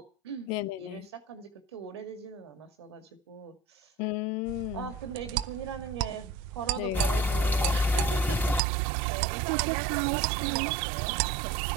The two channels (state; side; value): drops out; left; at 8.6 s